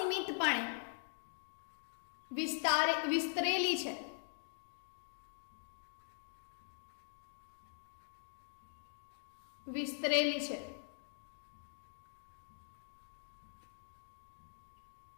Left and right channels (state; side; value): silent; right; digital silence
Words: વિસ્તરેલી છે. વિસ્તરેલી છે.